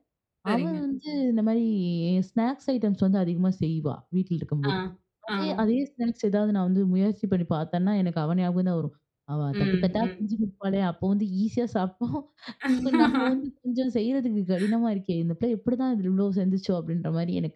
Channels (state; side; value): identical; both; correlation 1.00